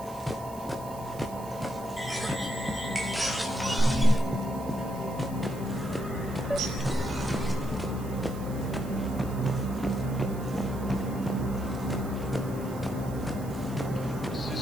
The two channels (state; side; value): noise; right; hiss, 19 dB below the sound